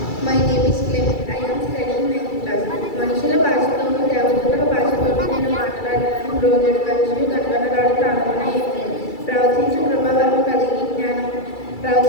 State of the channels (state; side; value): late; right; 2.3 ms